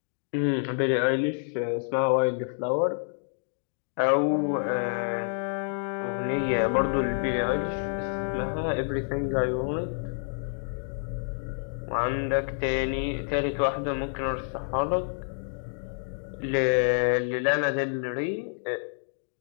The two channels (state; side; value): silent; right; digital silence